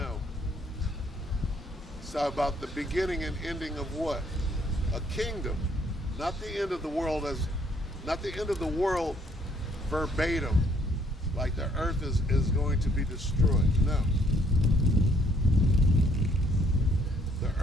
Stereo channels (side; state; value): both; normal; correlation 0.65